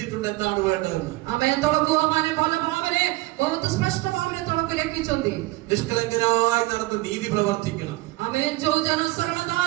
എന്താണ് വേണ്ടതെന്ന്। ആമേൻ। ତଳକୁ ମାନେ ଭଲ ଭାବରେ ବହୁତ ସ୍ପଷ୍ଟ ଭାବରେ ତଳକୁ ଲେଖିଛନ୍ତି, നിഷ്കളങ്കനായി നടന്ന് നീതി പ്രവർത്തിക്കണം। ആമേൻ। ଯୋଉ ଜନ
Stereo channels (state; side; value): quieter; left; 20.2 dB